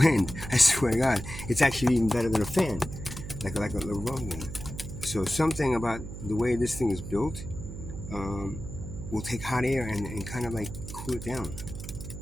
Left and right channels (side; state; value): right; noise; hum, 9 dB below the sound